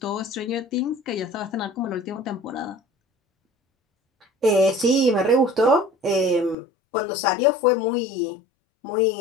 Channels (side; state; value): right; drops out; at 6.6 s